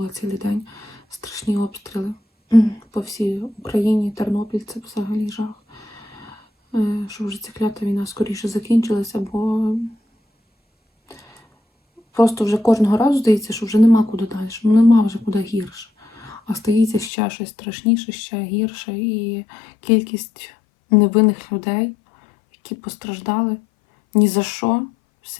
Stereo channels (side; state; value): right; drops out; at 17.1 s